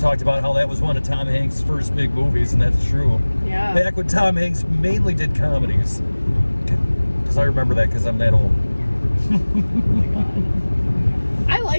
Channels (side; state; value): both; inverted; correlation -1.00